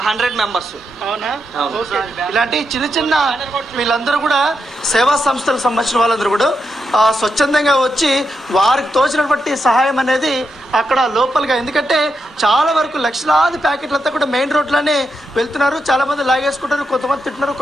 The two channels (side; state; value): both; normal; correlation 0.84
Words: 100 మెంబర్స్. అవునా? ఇలాంటి చిన్న చిన్న వీళ్ళందరూ కూడా సేవా సంస్థలకు సంబంధించిన వాళ్ళందరూ కూడా స్వచ్ఛందంగా వచ్చి వారికి తోచినటువంటి సహాయం అనేది అక్కడ లోపలిగా, ఎందుకంటే చాలా వరకు లక్షలాది ప్యాకెట్లంతా కూడా మెయిన్ రోడ్లోనే వెళ్తున్నారు. చాలా మంది లాగేసుకుంటారు, కొంతమంది తింటున్నారు,